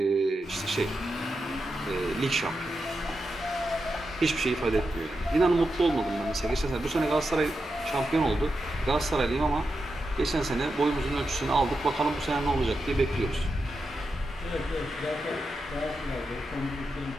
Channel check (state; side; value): normal; both; correlation 0.88